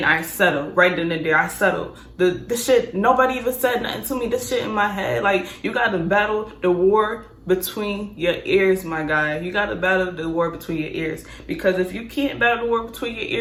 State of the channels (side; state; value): both; identical; correlation 1.00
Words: I settled. Right then and there, I settled. The shit, nobody even said nothing to me. This shit in my head, like, you gotta battle the war between your ears, my guy. You gotta battle the war between your ears. Because if you can't battle the war between your